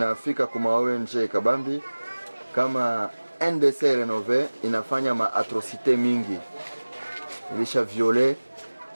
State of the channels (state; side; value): inverted; both; correlation -1.00